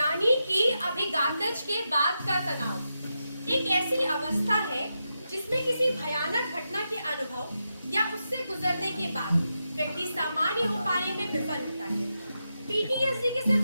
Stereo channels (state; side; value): inverted; both; correlation -0.87